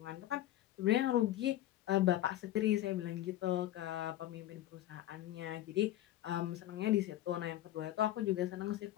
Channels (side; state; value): right; quieter; 13.9 dB